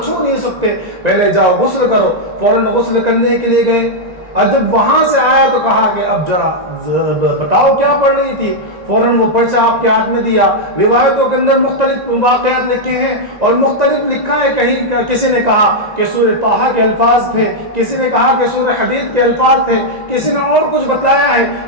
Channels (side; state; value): left; late; 1.9 ms